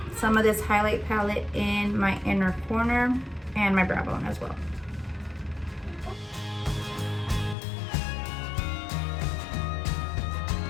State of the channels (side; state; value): right; drops out; at 7.6 s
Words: some of this highlight palette in my inner corner and my brow bone as well.